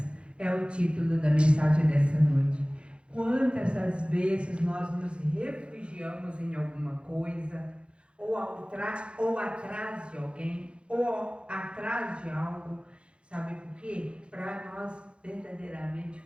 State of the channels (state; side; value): late; left; 0.057 ms